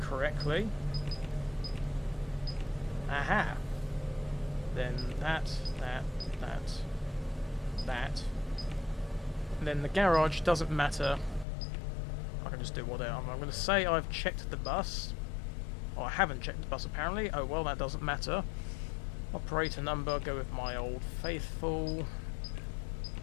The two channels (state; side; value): drops out; right; at 11.5 s